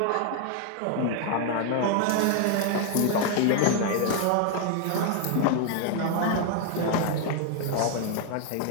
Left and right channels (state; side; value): different; both; correlation 0.00